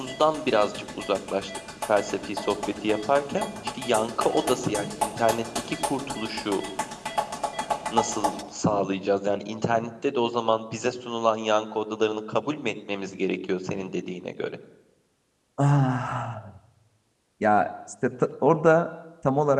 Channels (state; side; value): identical; both; correlation 1.00